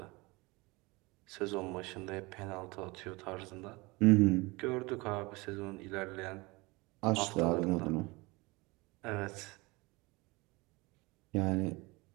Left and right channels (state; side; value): quieter; left; 24.2 dB